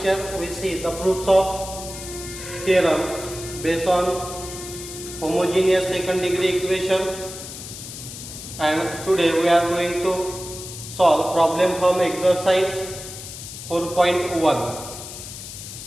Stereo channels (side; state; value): left; noise; hiss, 11 dB below the sound